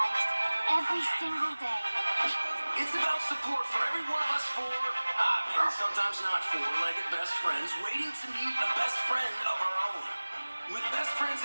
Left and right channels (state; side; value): inverted; both; correlation -1.00